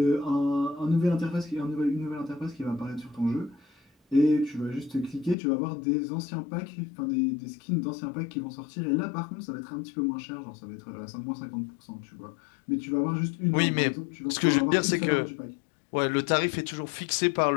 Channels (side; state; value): right; drops out; at 5.4 s